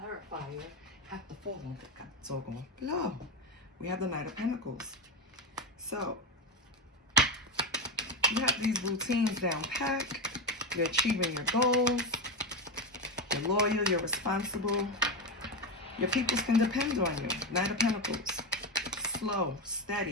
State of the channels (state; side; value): normal; both; correlation 0.14